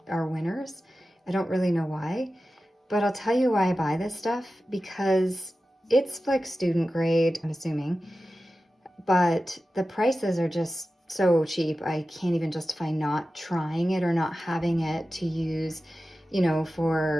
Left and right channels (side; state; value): both; normal; correlation 0.94